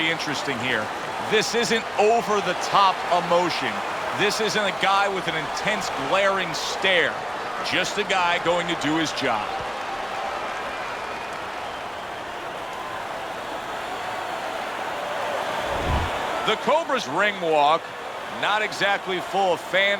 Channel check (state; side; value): identical; both; correlation 1.00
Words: interesting here. This isn't over-the-top emotion. This isn't a guy with an intense, glaring stare. Just a guy going to do his job. The Cobra's ring walk, not exactly full of